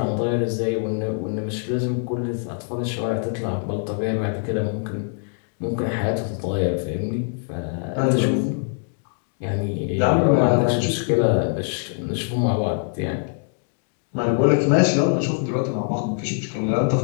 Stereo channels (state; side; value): silent; right; 56 dB below the other